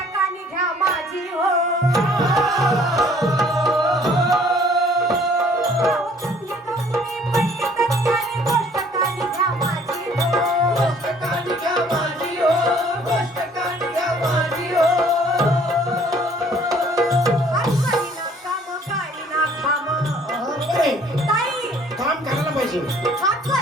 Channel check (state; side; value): normal; both; correlation 0.57